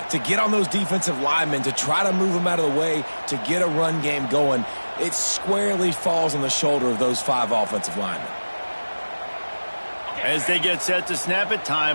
To get on those defensive linemen, to try to move them out of the way, to get a run game going, it squarely falls on the shoulder of those 5 offensive linemen. As they get set to snap it,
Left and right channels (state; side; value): inverted; both; correlation -1.00